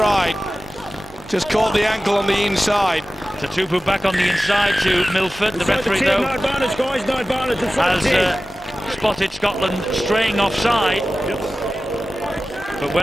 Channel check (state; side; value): normal; both; correlation 0.95